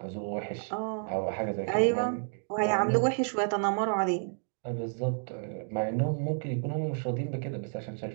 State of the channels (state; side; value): silent; left; 57 dB below the other